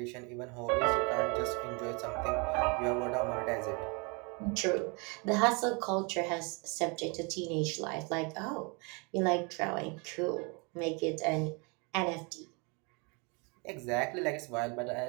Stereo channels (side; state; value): left; quieter; 31.5 dB